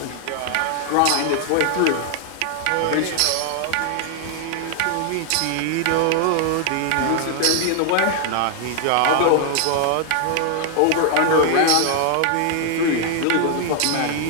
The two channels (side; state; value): both; different; correlation 0.00